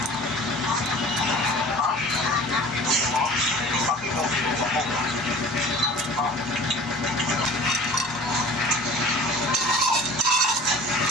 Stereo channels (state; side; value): normal; both; correlation 0.43